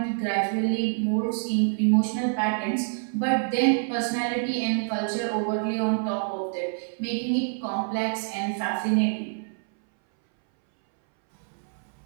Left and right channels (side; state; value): left; silent; 61 dB below the other